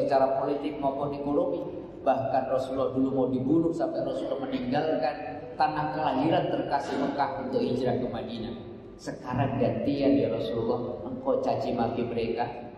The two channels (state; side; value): identical; both; correlation 1.00